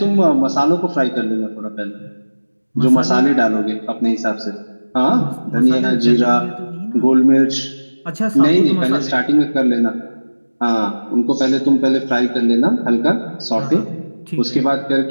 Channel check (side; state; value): both; inverted; correlation -1.00